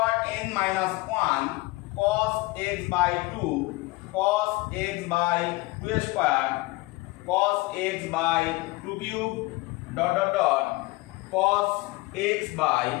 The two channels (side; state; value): right; quieter; 22.3 dB